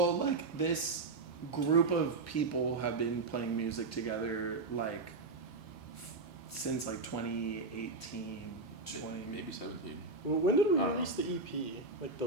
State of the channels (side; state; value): left; quieter; 3.7 dB